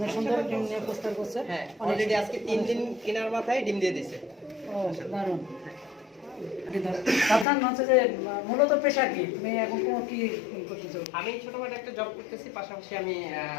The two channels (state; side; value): drops out; right; at 7.5 s